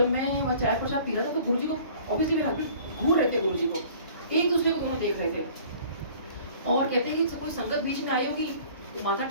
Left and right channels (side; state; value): both; inverted; correlation -0.50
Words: मैं वहाँ चाय प्रसाद पी रहा था तो गुरुजी को ऑब्वियसली मेरे हस्बैंड घूर रहे थे, गुरुजी को एक दूसरे को दोनों देख रहे थे। और कहते हैं कि कोई संगत बीच में आई होगी तो माथा